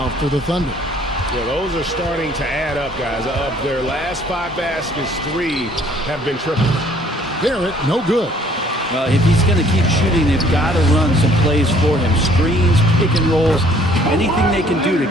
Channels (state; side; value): normal; both; correlation 0.59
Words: for the Thunder. Yeah, those are starting to add up, guys. Of their last 5 baskets, 3 have been triple. Barrett, no good. Well, if he's going to keep shooting, they've got to run some plays for him. Screens, pick and rolls, anything they can do to